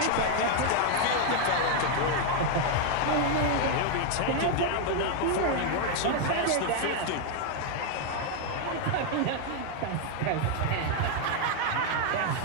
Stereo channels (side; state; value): both; different; correlation 0.00